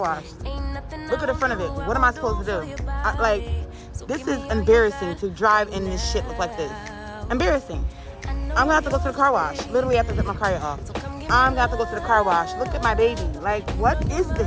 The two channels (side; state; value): both; identical; correlation 1.00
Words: Look at the front of it. What am I supposed to do? Like, this is embarrassing to drive in this shit look like this. Embarrassing. I'm gonna have to go to the car wash. Literally have to get my car off. I'm gonna have to go to the car wash. Look at my baby. Like, what is